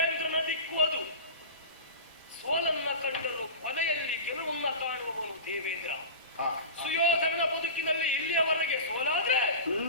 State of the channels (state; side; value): inverted; both; correlation -0.30